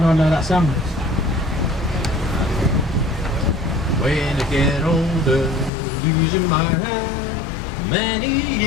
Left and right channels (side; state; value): right; drops out; at 5.7 s